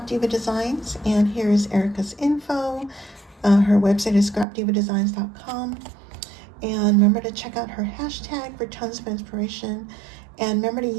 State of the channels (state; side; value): drops out; left; at 4.5 s